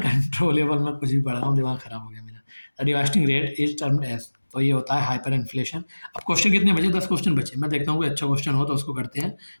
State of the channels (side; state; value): both; inverted; correlation -1.00